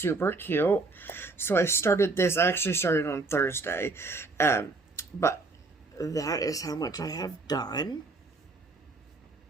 cute. So I started this, I actually started on Thursday, but that is how much I have done.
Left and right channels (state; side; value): quieter; left; 3.5 dB